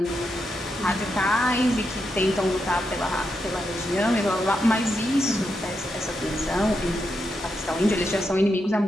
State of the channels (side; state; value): both; normal; correlation 0.84